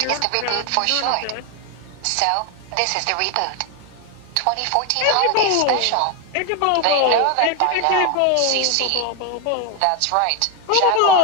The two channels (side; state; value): both; different; correlation 0.01